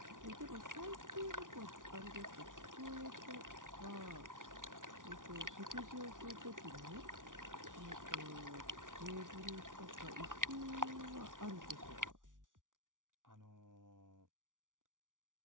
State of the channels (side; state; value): left; late; 0.88 ms